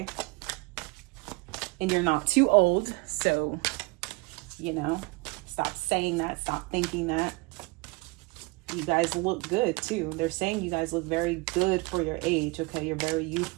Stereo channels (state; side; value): quieter; left; 26.3 dB